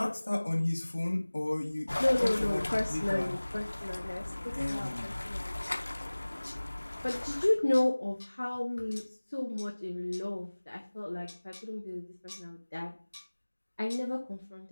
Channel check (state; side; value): inverted; both; correlation -1.00